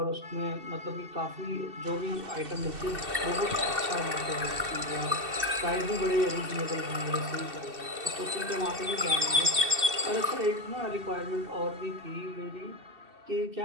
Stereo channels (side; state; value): left; late; 2.7 ms